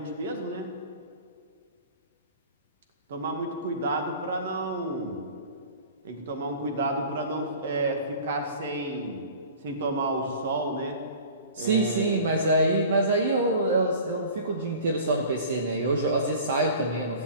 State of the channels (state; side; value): inverted; both; correlation -0.42